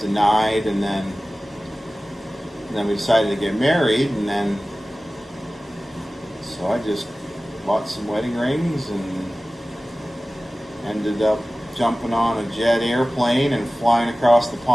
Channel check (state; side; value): normal; both; correlation 0.97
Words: and then we decided to get married, and then so I just bought some wedding rings and ended up jumping on a jet airplane and flying across the